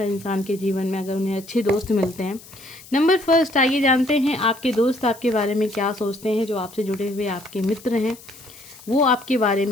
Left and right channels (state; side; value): noise; left; hiss, 20 dB below the sound